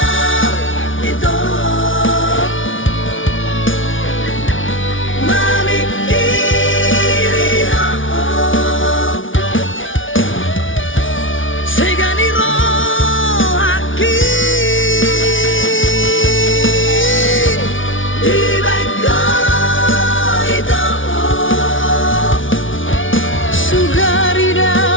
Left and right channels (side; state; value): right; late; 0.57 ms